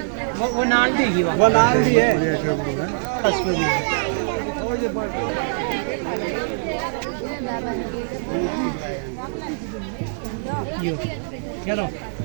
वो नाल दी वो नाल दी है। यो चलो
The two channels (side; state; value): left; silent; digital silence